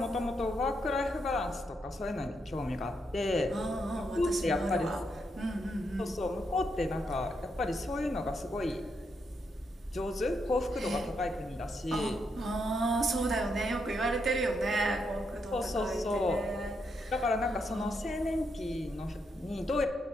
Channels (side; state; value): both; normal; correlation 0.80